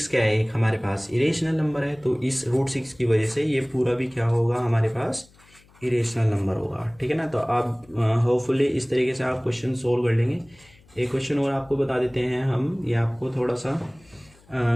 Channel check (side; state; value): left; noise; hum, 29 dB below the sound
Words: क्या है, एक हमारे पास इरेशनल नंबर है, तो इस √6 की वजह से ये पूरा भी क्या होगा, हमारे पास इरेशनल नंबर होगा, ठीक है ना। तो आप होपफुली इस तरीके से आप क्वेश्चन सोल्व कर लेंगे। एक क्वेश्चन और आपको बता देते हैं हम, ये आपको थोड़ा सा